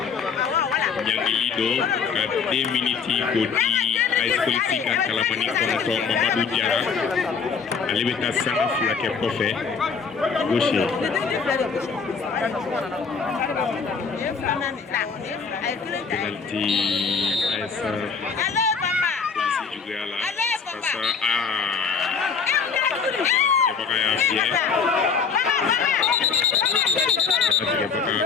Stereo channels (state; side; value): quieter; right; 5.8 dB